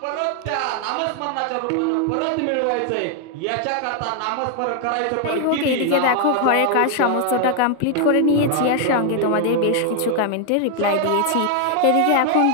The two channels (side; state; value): both; different; correlation 0.00